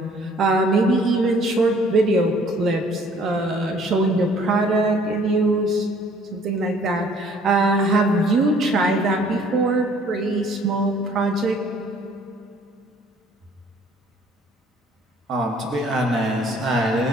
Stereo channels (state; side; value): normal; both; correlation 0.57